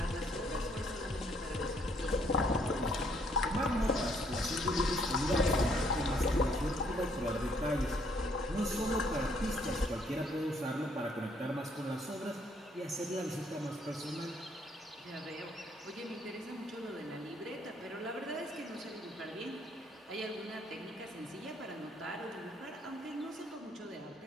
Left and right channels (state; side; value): normal; both; correlation 0.67